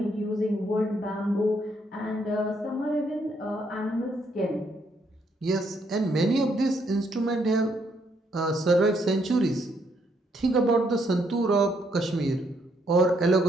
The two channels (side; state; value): both; normal; correlation 0.73